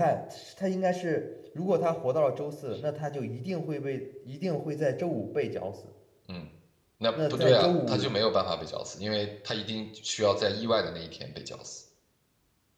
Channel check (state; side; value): identical; both; correlation 1.00